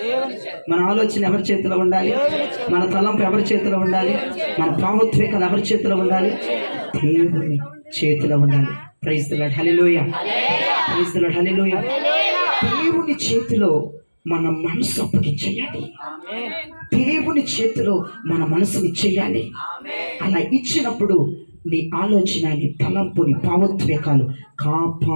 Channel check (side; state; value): both; inverted; correlation -1.00